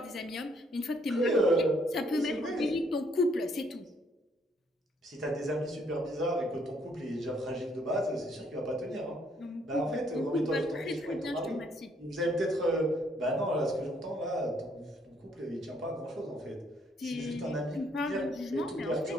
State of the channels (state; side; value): normal; both; correlation 0.68